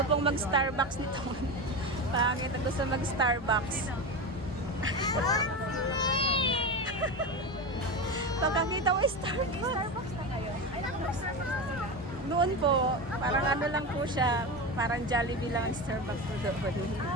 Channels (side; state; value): both; normal; correlation 0.21